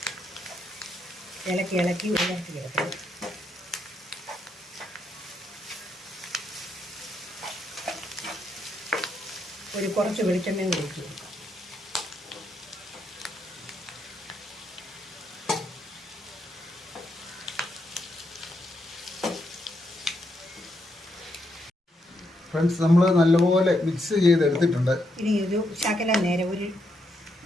ഇളക്കി ഉയർത്തി കിടക്കണം. കുറച്ച് വെളിച്ചെണ്ണയും കൂടി ഒഴിച്ച് കൊടുക്കാം. ഫ്രണ്ട്സ്, നമ്മൾ നല്ലപോലെ മിക്സ് ചെയ്തെടുത്തിട്ടുണ്ട്. ഇനി ഒരു ശകലം നേരം ഒരു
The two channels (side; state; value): both; normal; correlation 0.79